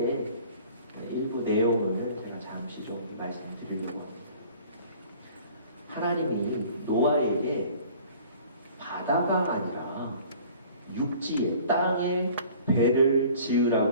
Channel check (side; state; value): both; inverted; correlation -0.49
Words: 일부 내용을 제가 잠시 좀 말씀드리려고 합니다. 하나님이 노아에게 바다가 아니라 육지에 땅에 배를